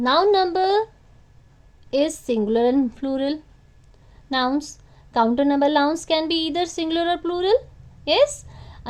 number is singular and plural nouns. Countable nouns can be either singular or plural. Yes?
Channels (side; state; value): both; identical; correlation 1.00